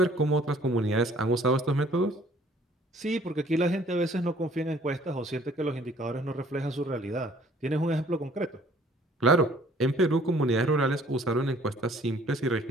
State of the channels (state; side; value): normal; both; correlation 0.57